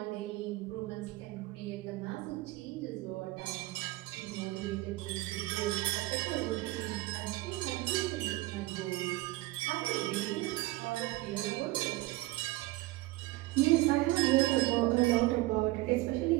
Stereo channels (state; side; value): quieter; left; 19.4 dB